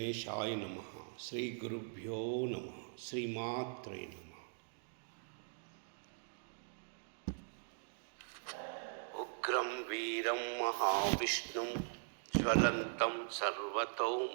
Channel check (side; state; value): left; silent; digital silence